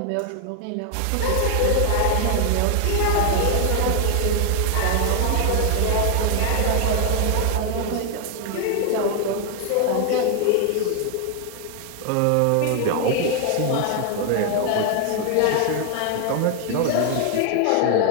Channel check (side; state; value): both; different; correlation 0.00